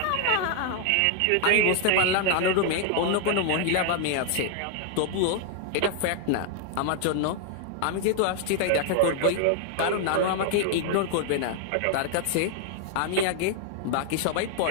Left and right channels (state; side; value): different; both; correlation 0.00